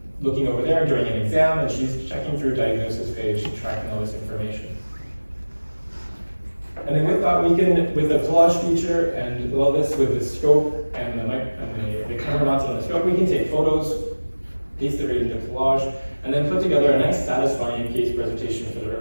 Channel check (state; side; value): inverted; both; correlation -1.00